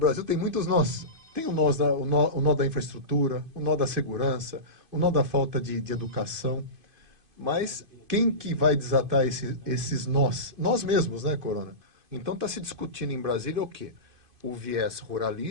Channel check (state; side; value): late; left; 2.5 ms